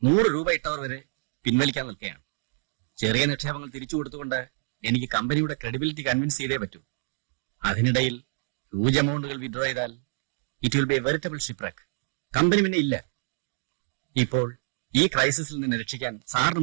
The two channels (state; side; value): silent; left; 60 dB below the other